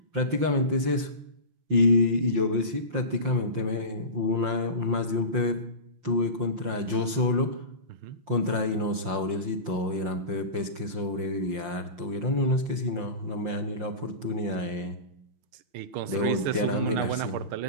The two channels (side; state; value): left; late; 5.7 ms